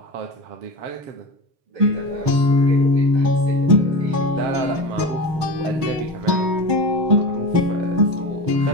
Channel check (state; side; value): late; left; 6.5 ms